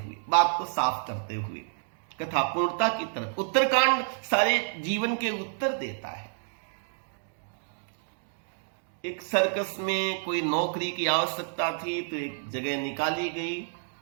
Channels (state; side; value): silent; left; digital silence